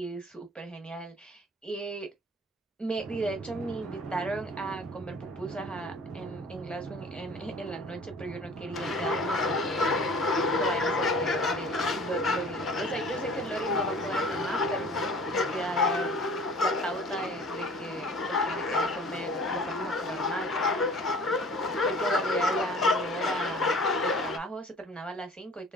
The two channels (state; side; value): normal; both; correlation 0.46